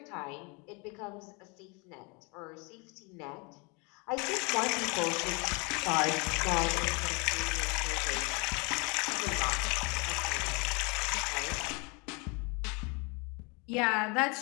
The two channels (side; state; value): right; quieter; 30.7 dB